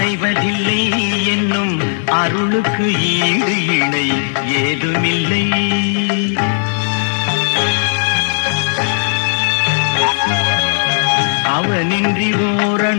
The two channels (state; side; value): silent; right; 57 dB below the other